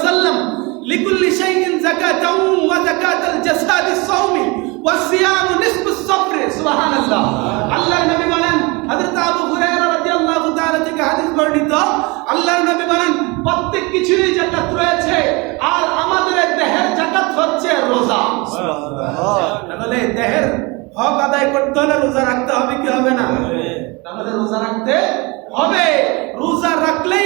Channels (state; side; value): quieter; left; 26.5 dB